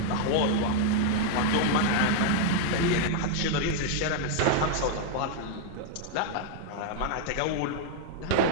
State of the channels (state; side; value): different; both; correlation 0.00